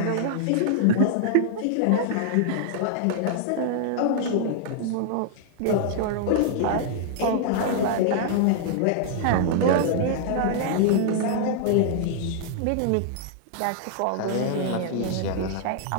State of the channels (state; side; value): different; both; correlation -0.01